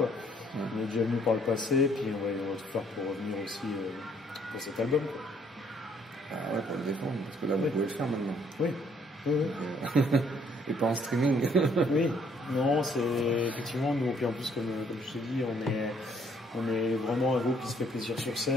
On est déjà venu par le passé, puis on va tout faire pour revenir aussi pour cet album, quoi. Ah ouais, pour le défendre, parce que là, vous pouvez le faire maintenant. Oui. Et pas en streaming. Oui. Non, c'est effectivement, nous, puis en plus, comme je te dis, on est vraiment un groupe qui se fait plaisir sur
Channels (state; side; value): normal; both; correlation 0.65